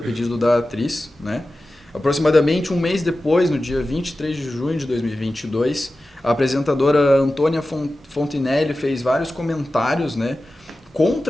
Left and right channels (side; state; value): both; normal; correlation 0.94